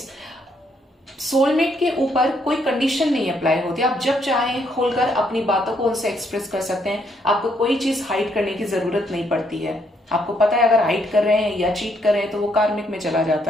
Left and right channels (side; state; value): both; normal; correlation 0.72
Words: सोलमेट के ऊपर कोई कंडीशन नहीं अप्लाई होती, आप जब चाहें खोलकर अपनी बातों को उनसे एक्सप्रेस कर सकते हैं। आपको कोई चीज हाइड करने की जरूरत नहीं पड़ती है। आपको पता है अगर हाइड कर रहे हैं या चीट कर रहे हैं तो वो कार्मिक में चला